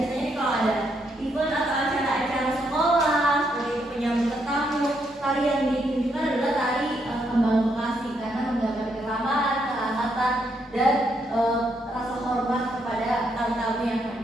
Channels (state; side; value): normal; both; correlation 0.76